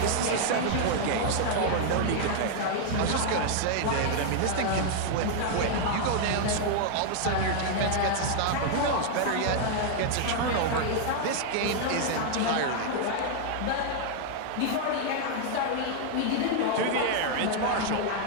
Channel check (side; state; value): both; different; correlation 0.00